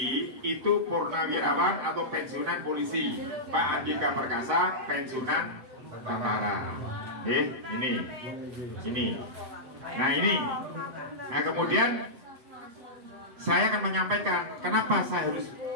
itu purnawirawan atau pensiunan polisi. Pak Andika Perkasa pensiunan tentara. Ini. Nah ini. Nah kemudian saya akan menyampaikan kenapa saya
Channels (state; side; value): late; left; 7.6 ms